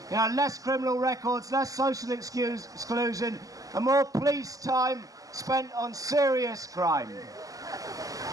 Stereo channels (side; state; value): left; late; 0.17 ms